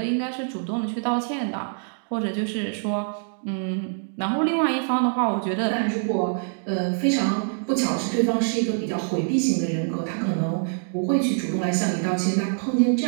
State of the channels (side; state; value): left; silent; digital silence